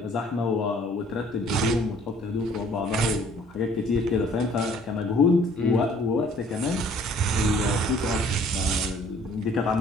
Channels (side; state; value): both; normal; correlation 0.57